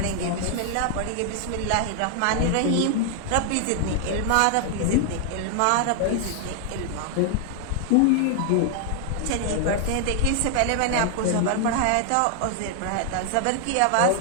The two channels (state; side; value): different; both; correlation 0.00